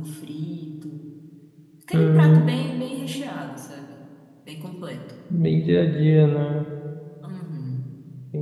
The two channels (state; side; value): identical; both; correlation 1.00